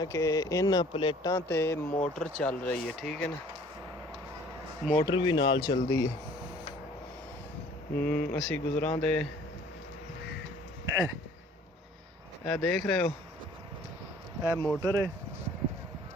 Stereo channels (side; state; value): both; normal; correlation 0.53